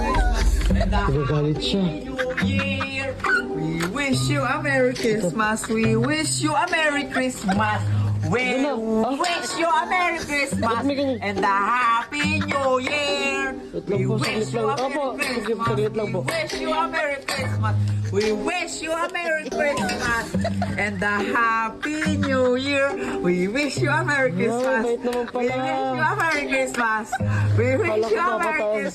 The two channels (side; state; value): both; identical; correlation 1.00